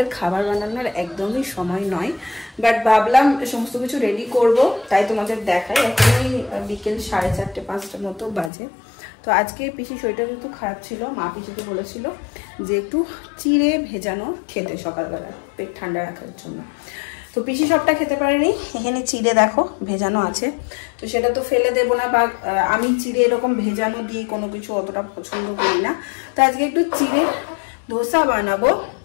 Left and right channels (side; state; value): right; drops out; at 8.5 s